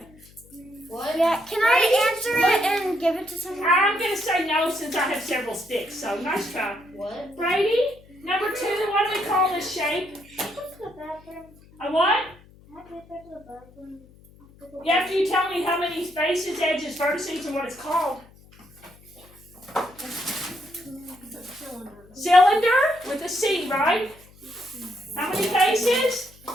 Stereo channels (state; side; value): noise; left; hum, 25 dB below the sound